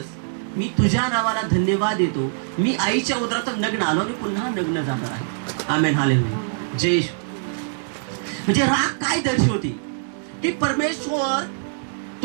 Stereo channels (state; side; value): silent; left; 63 dB below the other